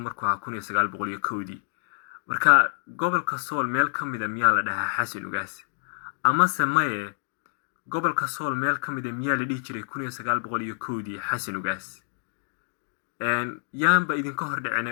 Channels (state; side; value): silent; right; digital silence